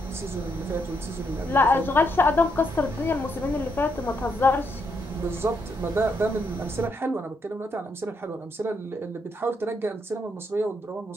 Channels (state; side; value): normal; both; correlation 0.77